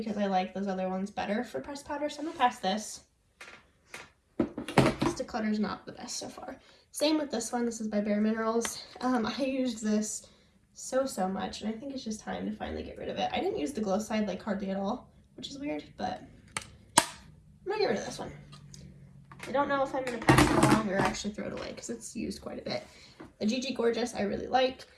I like those other ones better for pressed powder. So I'm going to pass this. This Declutter is not the best so far. Same with this one. This is by Bare Minerals. I used this so much, and I think it's just time to finally get rid of it. I didn't use the glow side like hardly at all, which is weird, but I'm going to get rid of this one. I don't know if I'm going to pass it along or actually throw it away because it's used quite a bit. The GG Gorgeous I really like.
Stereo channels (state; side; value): identical; both; correlation 1.00